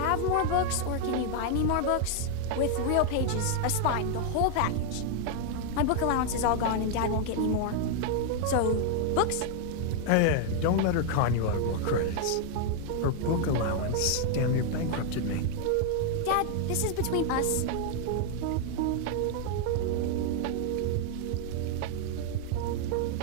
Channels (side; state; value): both; different; correlation 0.00